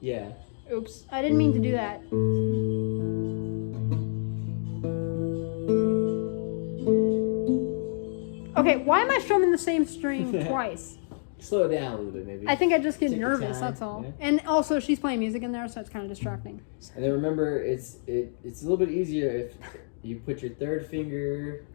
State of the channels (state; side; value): silent; right; digital silence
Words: Yeah. Oops, I didn't mean to do that. Okay, why am I strumming the same string twice? Slow it down a little bit, maybe. I think I just get Take your nervous. time, That's all. yeah. And also, she's playing music in there, so it's kind of distracting. And then remember, it's a little bit easier if you put your third finger